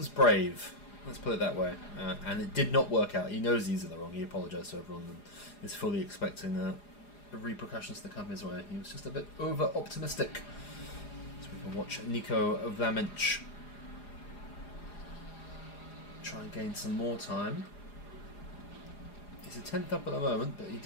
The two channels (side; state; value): right; late; 4.9 ms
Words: brave. Let's put it that way. And it did not work out. He knows he's in the wrong. He apologised to everyone and is fully expecting the repercussions to come his way. He was just a bit over-optimistic. So we can watch Nico Vlaminch try and gain some more time. He's a 10th up at the moment, but he